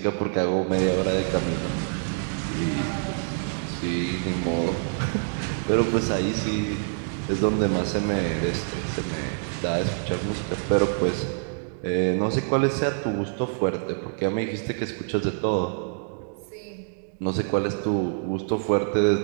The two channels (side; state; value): left; silent; digital silence